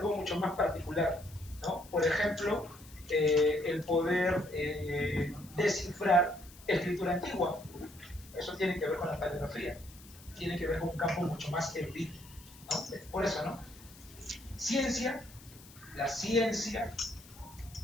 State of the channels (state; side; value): noise; left; hiss, 21 dB below the sound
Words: mucho más particular, ¿no? Por ejemplo, el poder descifrar escritura antigua. Eso tiene que ver con la paleografía, tiene que ver con un campo mucho más erudito, ¿no? Por eso, ¿no? Ciencia, las ciencias